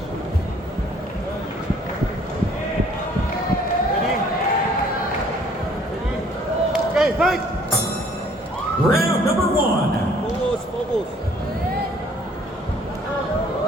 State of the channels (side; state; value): both; normal; correlation 0.58